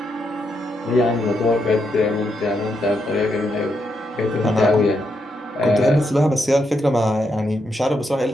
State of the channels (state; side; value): normal; both; correlation 0.81